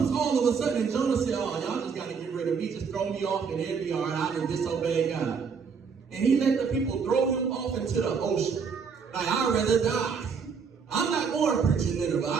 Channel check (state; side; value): quieter; left; 5.9 dB